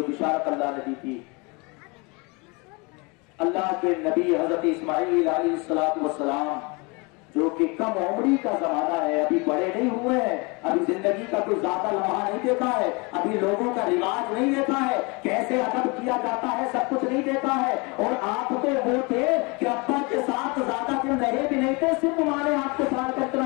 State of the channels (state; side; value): quieter; right; 28.7 dB